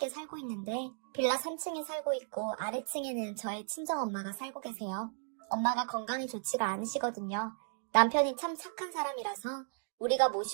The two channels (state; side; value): silent; left; digital silence